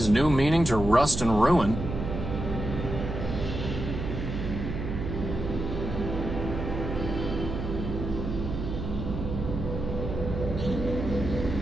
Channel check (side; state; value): right; noise; hum, 4 dB below the sound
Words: new meaning to rust and ruin.